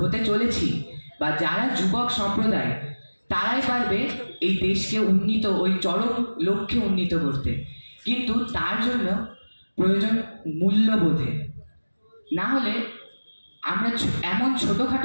চলেছি বা যারা যুবক সম্প্রদায়, তারাই পারবে এই দেশকে উন্নীত, ওই চরম লক্ষ্যে উন্নীত করতে। কিন্তু তার জন্য প্রয়োজন মূল্যবোধে। না হলে আমরা এমন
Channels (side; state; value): both; inverted; correlation -1.00